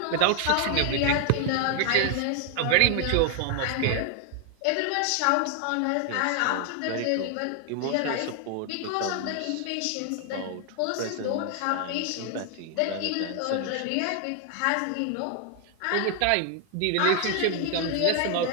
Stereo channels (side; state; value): both; different; correlation 0.00